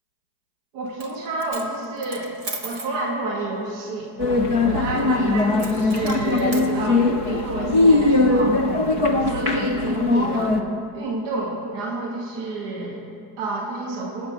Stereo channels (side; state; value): left; late; 4.8 ms